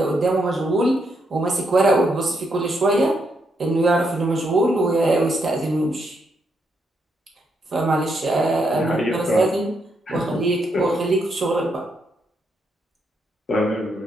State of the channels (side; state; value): both; normal; correlation 0.79